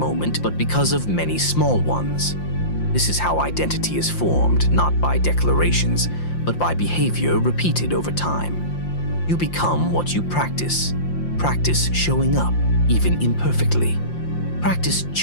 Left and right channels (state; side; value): late; right; 5.7 ms